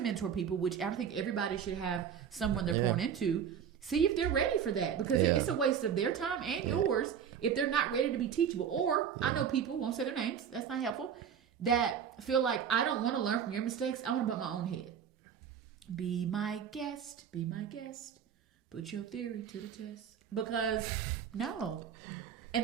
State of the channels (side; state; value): left; quieter; 8.0 dB